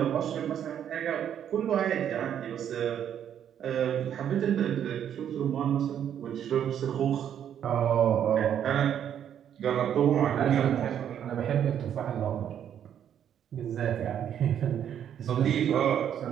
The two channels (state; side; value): quieter; left; 9.5 dB